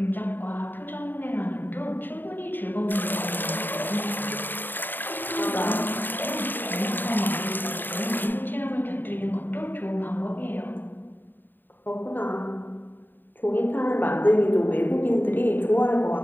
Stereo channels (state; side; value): late; right; 0.092 ms